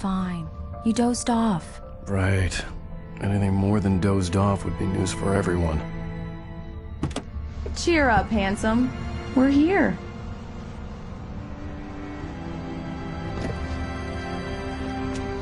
You dozed off. Right. Anything more than dozed off would be news for everyone. Cheer up, handsome. We're here.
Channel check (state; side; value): identical; both; correlation 1.00